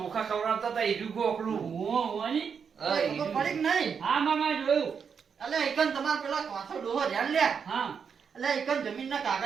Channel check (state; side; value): quieter; left; 6.5 dB